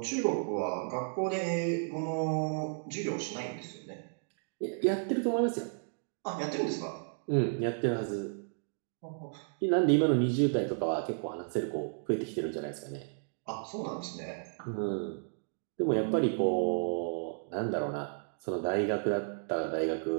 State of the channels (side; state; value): left; silent; digital silence